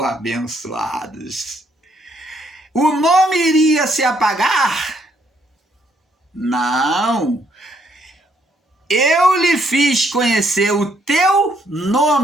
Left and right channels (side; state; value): both; normal; correlation 0.70